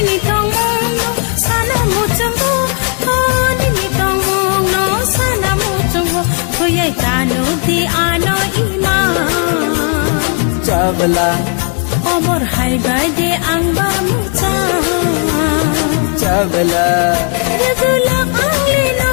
tong no sana mo chango ho nini tong no sana mo chango thoyai kanu di ano ima চাবলা Omor hai bai de ang ba mucha চাবলা Rebula angli no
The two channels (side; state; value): right; quieter; 38.5 dB